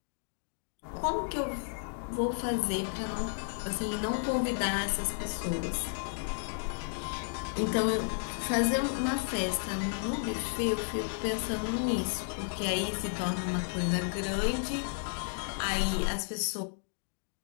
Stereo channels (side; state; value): right; silent; digital silence